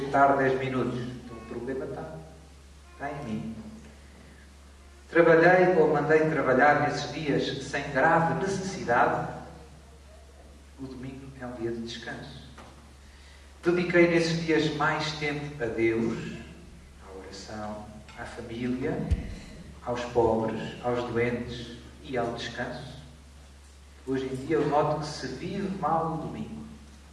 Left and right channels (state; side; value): identical; both; correlation 1.00